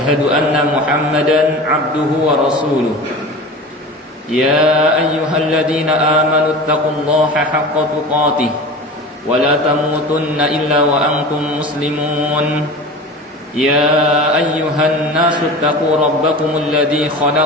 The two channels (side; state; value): both; normal; correlation 0.34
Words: أن محمدا عبده ورسوله يا أيها الذين آمنوا اتقوا الله حق تقاته ولا تموتن إلا وأنتم مسلمون يا أيها الناس اتقوا ربكم الذي